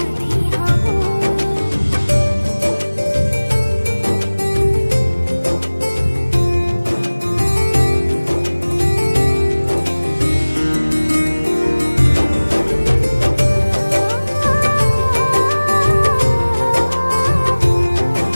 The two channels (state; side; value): inverted; both; correlation -1.00